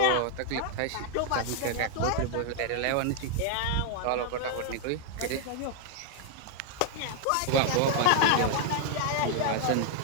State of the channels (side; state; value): both; different; correlation 0.00